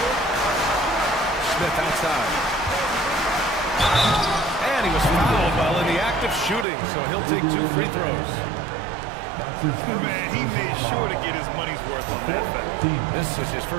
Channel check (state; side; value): drops out; left; at 6.7 s